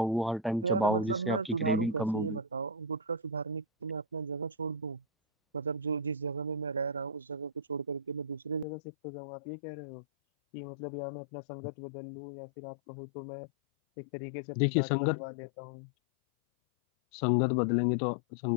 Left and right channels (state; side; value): drops out; right; at 8.7 s